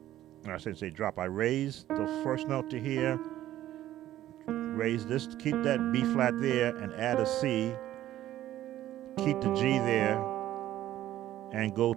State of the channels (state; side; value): quieter; left; 13.5 dB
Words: I shouldn't say drop. I raise the first note to here, raise this, keep that B flat there, and add a C. Keep the G there, and go